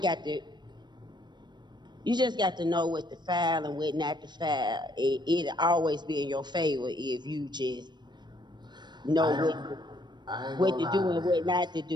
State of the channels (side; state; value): left; late; 0.21 ms